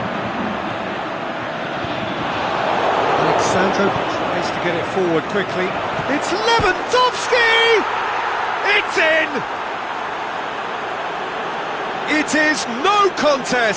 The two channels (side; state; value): both; identical; correlation 1.00